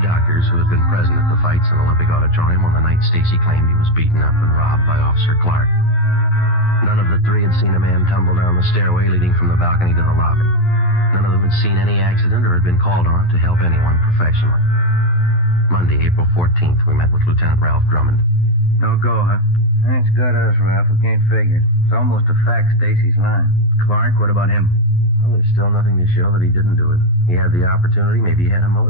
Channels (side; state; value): right; late; 11 ms